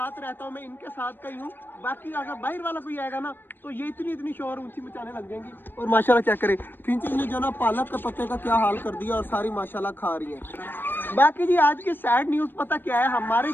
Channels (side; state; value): right; late; 0.096 ms